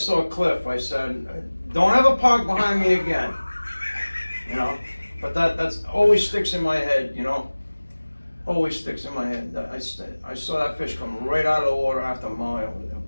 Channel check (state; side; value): inverted; both; correlation -1.00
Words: Cliff. I said, "Don't ever park behind me again." You know, but that's always sticks in my head. You know, always sticks in my head. I saw that fish come right out of the water after a mile with a